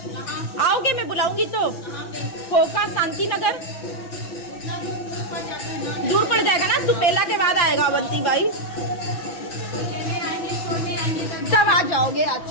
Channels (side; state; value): right; late; 6.1 ms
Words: आओगे, मैं बुलाऊंगी तो। खोखा शांति नगर दूर पड़ जाएगा ना, सुपेला के बाद आएगा अवंती भाई, तब आ जाओगे।